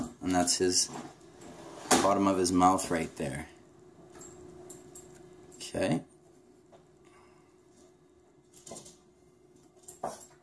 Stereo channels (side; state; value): both; identical; correlation 1.00